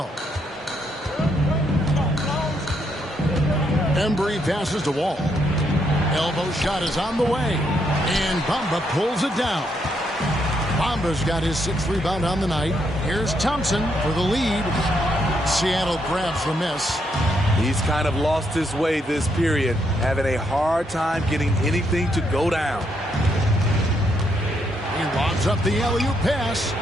Embry passes to Wall. Elbow shot is on the way. And Bamba pulls it down. Bamba's got his 6th rebound on the night. Here's Thompson for the lead. Seattle grabs the miss. He's kind of lost his way this period, having a hard time getting anything to go down. He lobs up the alley-oop pass.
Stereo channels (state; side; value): normal; both; correlation 0.76